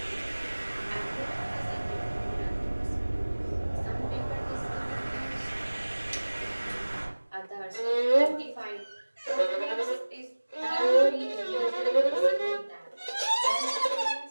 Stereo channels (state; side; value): inverted; both; correlation -1.00